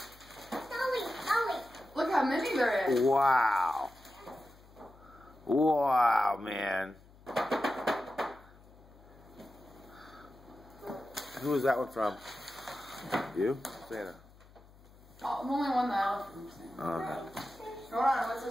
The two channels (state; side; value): noise; left; hum, 24 dB below the sound